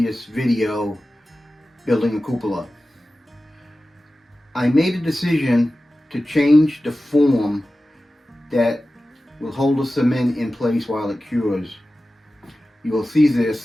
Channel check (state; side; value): normal; both; correlation 0.95